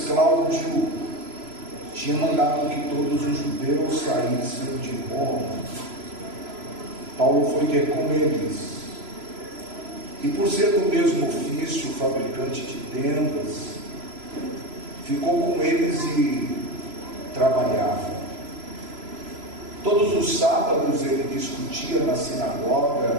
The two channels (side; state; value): left; late; 3.0 ms